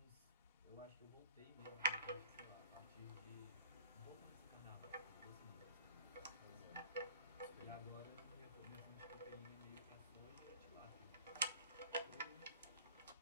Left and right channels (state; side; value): inverted; both; correlation -0.50